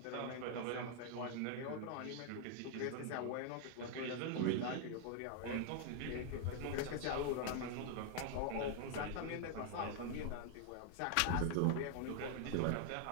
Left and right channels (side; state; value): both; different; correlation 0.00